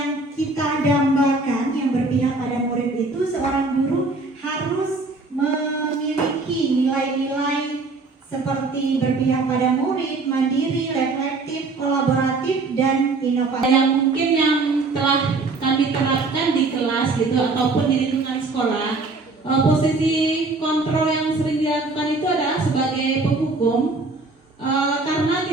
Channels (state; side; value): quieter; left; 3.6 dB